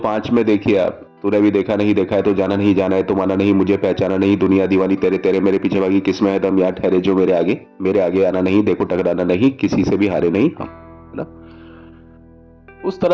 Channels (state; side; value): identical; both; correlation 1.00